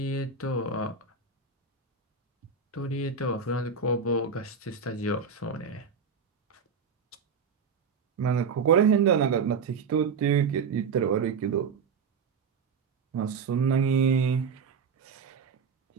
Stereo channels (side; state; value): left; quieter; 5.6 dB